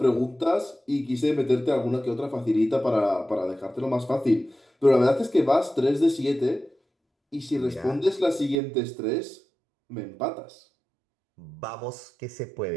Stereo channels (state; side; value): drops out; left; at 8.6 s